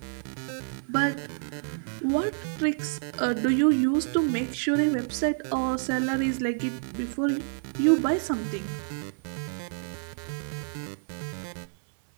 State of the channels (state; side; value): silent; left; 59 dB below the other